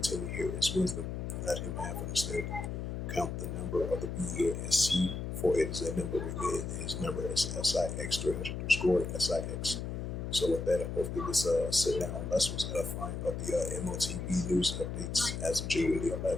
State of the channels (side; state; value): left; noise; hum, 4 dB below the sound